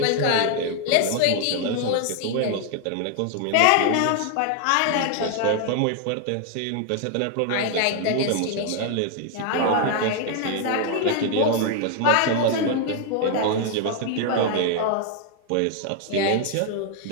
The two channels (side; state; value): both; different; correlation 0.00